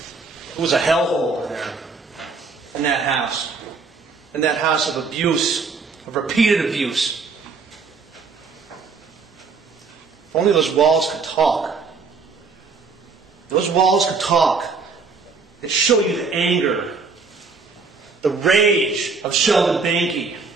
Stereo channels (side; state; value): left; quieter; 4.7 dB